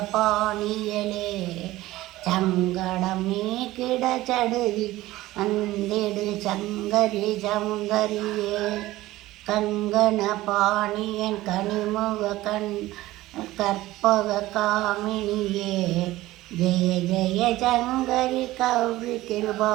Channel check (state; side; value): quieter; left; 17.0 dB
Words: பாணியலே, சங்கடம் நீக்கிட சடுதி வந்திடு சங்கரி சௌந்தரியே, கங்கண பாணியன் கனிமுக கற்பக காமினியே, ஜெய ஜெய சங்கரி கௌரி கிருபா